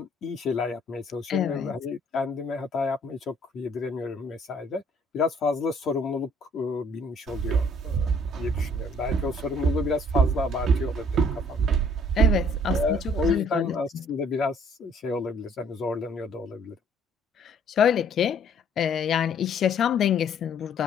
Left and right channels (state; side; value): normal; both; correlation 0.59